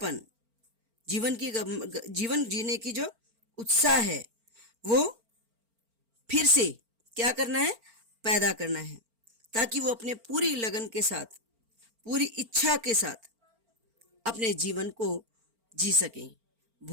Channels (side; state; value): left; late; 4.4 ms